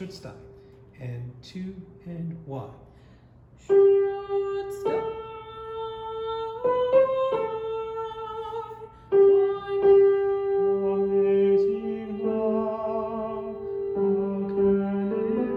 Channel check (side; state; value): both; identical; correlation 1.00